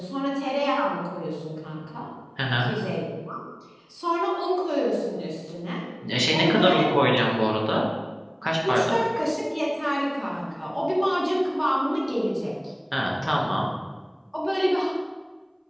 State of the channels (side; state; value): both; identical; correlation 1.00